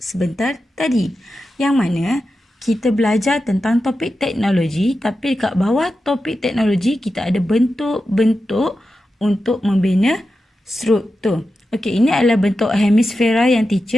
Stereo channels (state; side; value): normal; both; correlation 0.90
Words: sebentar tadi. Yang mana kita belajar tentang topik teknologi, tapi dekat bawah topik teknologi kita ada bentuk-bentuk untuk membina struktur. Okey, ini adalah bentuk hemisfera yang